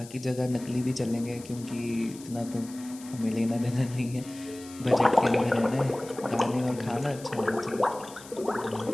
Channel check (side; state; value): left; noise; hiss, 18 dB below the sound